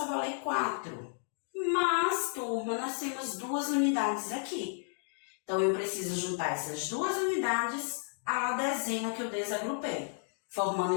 a valer 4. Mas, turma, nós temos duas unidades aqui. Então, eu preciso juntar essas duas unidades à dezena que eu desagrupei,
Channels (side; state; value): right; silent; 56 dB below the other